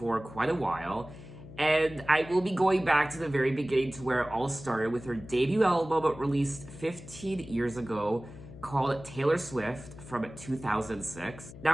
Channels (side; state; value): left; noise; hum, 16 dB below the sound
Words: quite a while, and I will be going back to the very beginning to where it all started with her debut album released 15 years ago, called Taylor Swift from 2006.